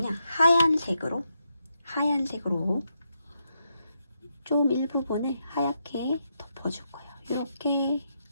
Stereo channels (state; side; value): inverted; both; correlation -0.82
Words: 하얀색으로 좀 일부분을 하얗게 덮어줄 거예요. 이렇게